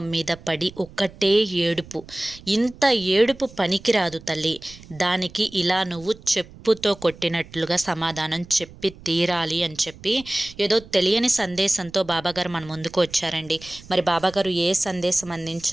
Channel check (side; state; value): right; noise; rumble, 20 dB below the sound